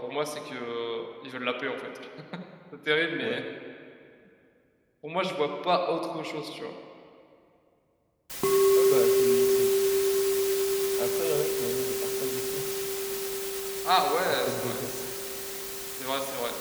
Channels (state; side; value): identical; both; correlation 1.00